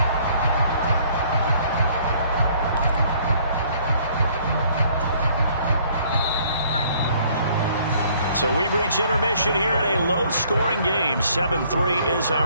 So we've reached intermission here in a low-scoring game. 7-3 is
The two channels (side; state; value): both; inverted; correlation -0.61